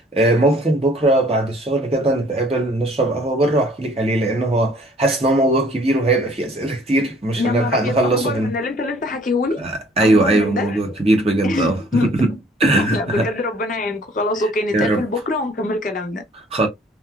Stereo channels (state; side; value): normal; both; correlation 0.57